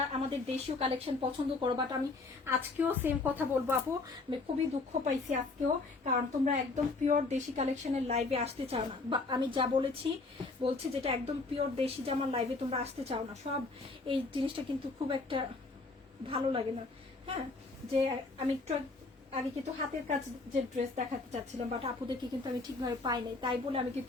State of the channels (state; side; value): quieter; right; 3.6 dB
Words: আমাদের দেশীয় কালেকশন পছন্দ করো, বাট আমি আজকেও সেম কথা বলবো আপু, আমি খুবই দুঃখ পাইছি আজকেও, কারণ তোমরা একদম পিওর দেশি কালেকশনের লাইভে আসতে চাও না, বা আমি যা বলছি যেটা একদম পিওর দেশি জামার লাইভে তোমরা আসতে চাও না। সব এই জিনিসটা কিন্তু খুব একটা ভালো লাগে না। হ্যাঁ, যে আমি একটু আগে কিন্তু হাতের কাজ যে ড্রেস দেখাতে চাচ্ছিলাম, বাট আপুদেরকে কিন্তু আমি ঠিকভাবে পাই নাই, তাই বলে আমি